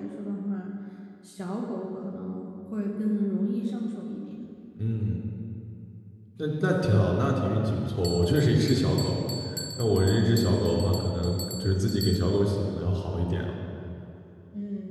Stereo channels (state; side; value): identical; both; correlation 1.00